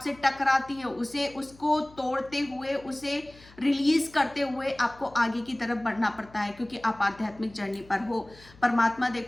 टकराती है, उसको तोड़ते हुए, उसे रिलीज करते हुए आपको आगे की तरफ बढ़ना पड़ता है, क्योंकि आप आध्यात्मिक जर्नी पर हो। परमात्मा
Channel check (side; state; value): left; noise; hum, 24 dB below the sound